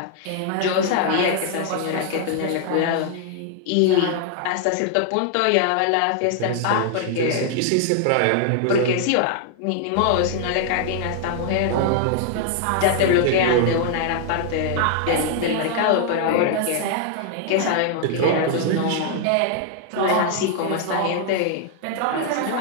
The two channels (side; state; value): both; different; correlation 0.00